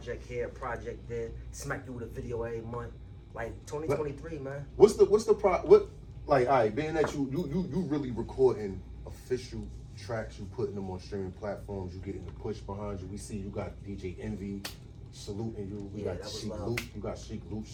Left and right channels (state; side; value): identical; both; correlation 1.00